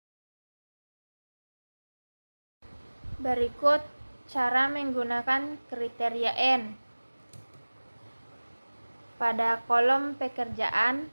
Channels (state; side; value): inverted; both; correlation -1.00